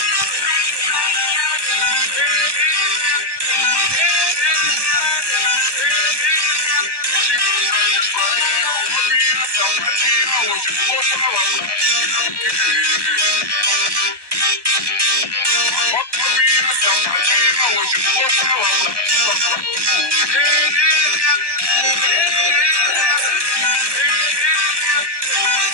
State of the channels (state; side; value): late; left; 1.1 ms